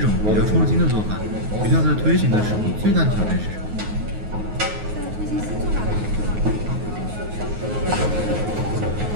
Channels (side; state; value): left; late; 9.5 ms